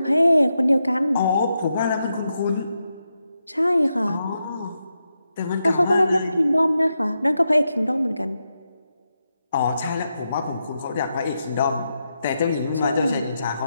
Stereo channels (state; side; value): inverted; both; correlation -0.86